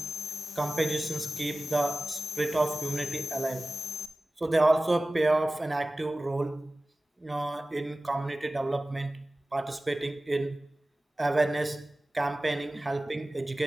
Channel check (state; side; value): normal; both; correlation 0.97